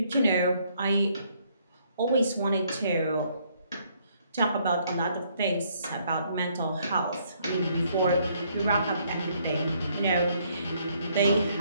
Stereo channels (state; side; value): inverted; both; correlation -0.68